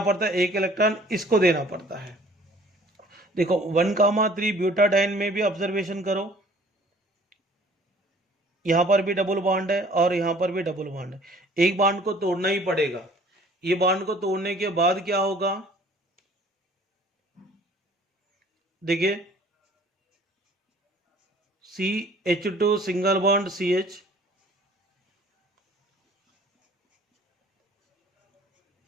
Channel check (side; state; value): both; normal; correlation 0.53